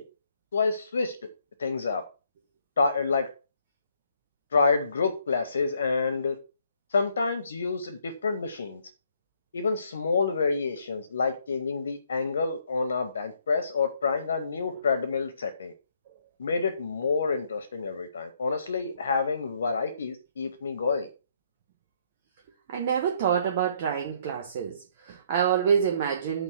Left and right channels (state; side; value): inverted; both; correlation -0.69